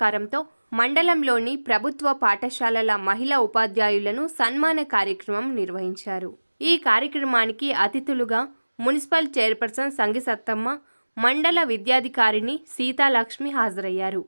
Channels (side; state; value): both; inverted; correlation -1.00